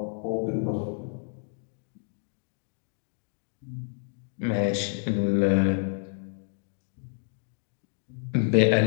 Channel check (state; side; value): silent; right; digital silence